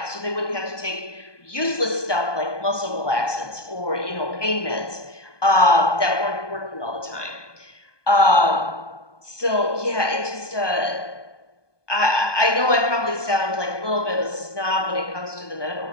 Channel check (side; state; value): right; late; 1.2 ms